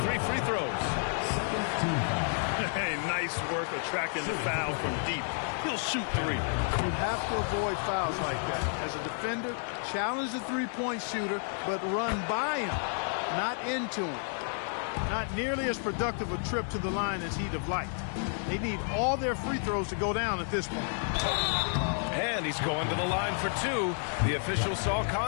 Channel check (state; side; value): silent; right; 57 dB below the other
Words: 3 free throws. Hey, nice work attracting the foul from deep. He'll shoot 3. You have to avoid fouls like that. As a defender, challenge the three-point shooter, but run by him, not into him. Not nearly as productive a trip to the line as he'd have liked. They need all their free throws to go down at this point. And he's going to the line for 2. The official saw